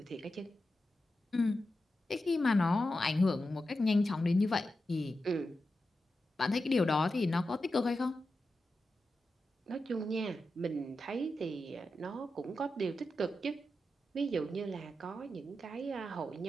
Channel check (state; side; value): normal; both; correlation 0.90